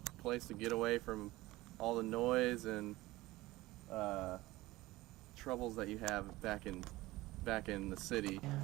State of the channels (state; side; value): quieter; left; 18.8 dB